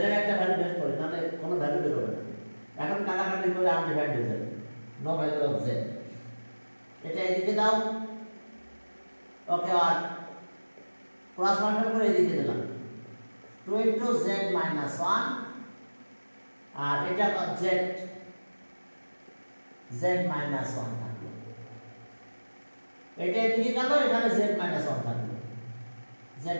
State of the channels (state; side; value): inverted; both; correlation -1.00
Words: এর একটা ভ্যালু বের করি, নাহলে কোনো ভ্যালু বের হবে না, এখন কাটাকাটি করে আনডিফাইন্ড হয়ে যাবে, নো ভ্যালু অফ z, এটা এদিকে দাও, ওকে, আর ক্রস মাল্টিপ্লাই করে এদিকে দিলাম 2 into z minus 1, আর এটা z minus 1 থাকলো, এটা এদিকে গেল, এখানে z minus 1 থাকলো, z